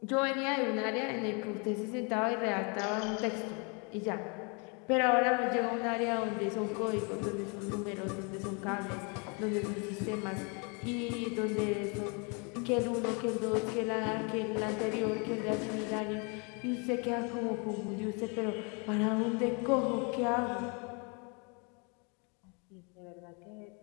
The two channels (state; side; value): quieter; right; 34.0 dB